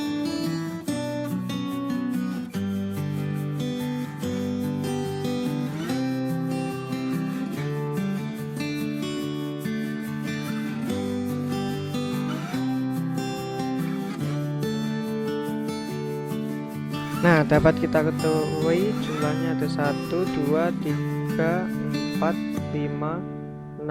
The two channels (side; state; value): both; identical; correlation 1.00